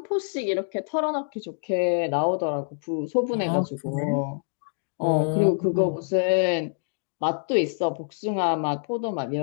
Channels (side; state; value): right; silent; digital silence